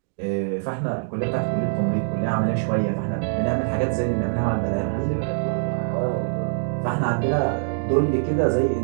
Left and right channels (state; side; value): silent; left; digital silence